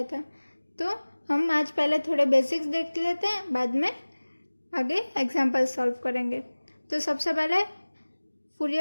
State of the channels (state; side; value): inverted; both; correlation -1.00